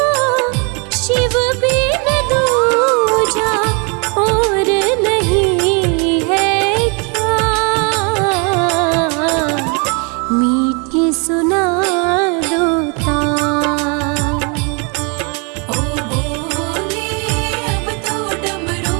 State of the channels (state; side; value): quieter; left; 33.8 dB